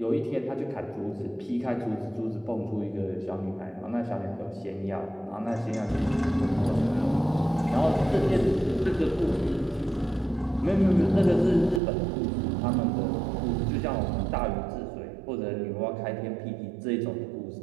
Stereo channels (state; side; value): drops out; left; at 11.8 s